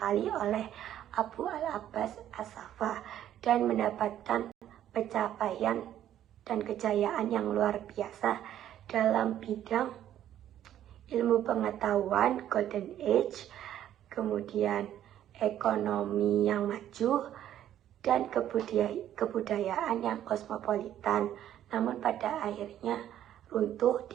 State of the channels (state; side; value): quieter; left; 11.4 dB